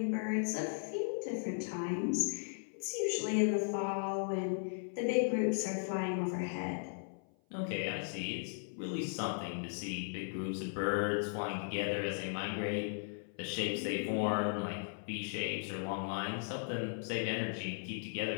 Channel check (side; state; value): right; silent; 53 dB below the other